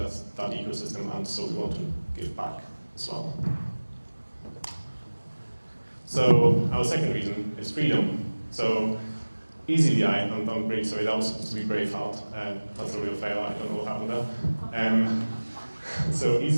ecosystem, and so we want to give back as well. So our second reason is freedom. So eazyBI, I'm really sorry, that was supposed to be Braveheart. That's a real fail, I don't know what happened there. So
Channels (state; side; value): inverted; both; correlation -1.00